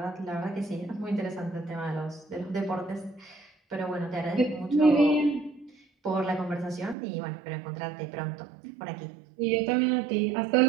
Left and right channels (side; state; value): left; drops out; at 7.0 s